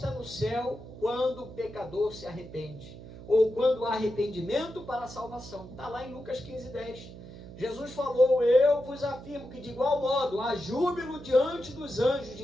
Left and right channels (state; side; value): noise; right; hum, 15 dB below the sound